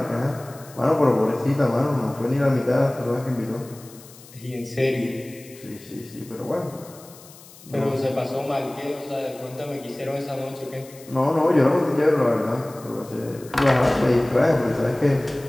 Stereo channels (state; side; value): noise; left; hiss, 21 dB below the sound